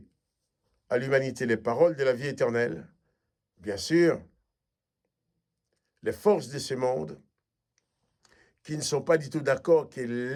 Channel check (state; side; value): identical; both; correlation 1.00